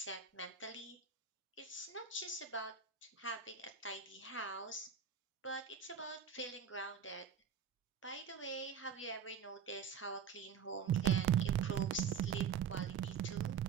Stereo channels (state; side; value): quieter; left; 7.0 dB